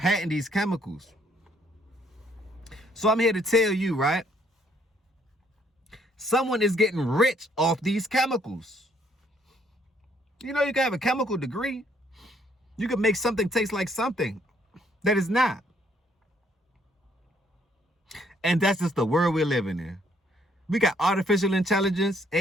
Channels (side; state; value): both; normal; correlation 0.67